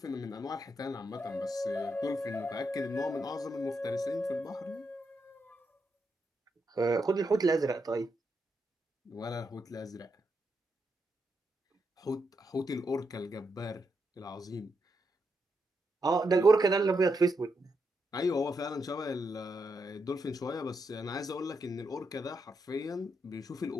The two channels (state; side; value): normal; both; correlation 0.82